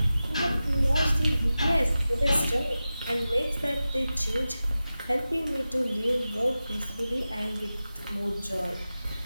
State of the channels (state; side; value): inverted; both; correlation -0.94